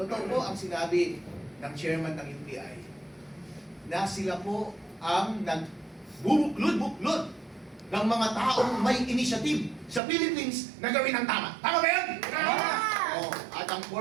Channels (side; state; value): left; drops out; at 10.0 s